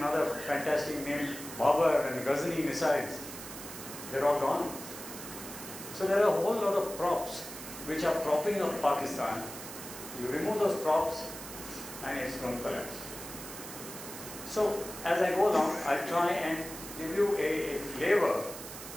other fantastic named Babur and Ghazni missiles? They're all gone. So there are a whole lot of props which are propping up Pakistan. You remove those props and it's going to collapse. So as I go along, I'll try and give you a flavor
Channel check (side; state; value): right; noise; hiss, 11 dB below the sound